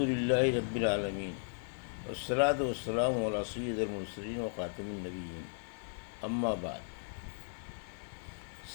للہ رب العالمین والصلاة والسلام علی سید المرسلین و خاتم النبیین اما بعد۔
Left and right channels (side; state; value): right; silent; digital silence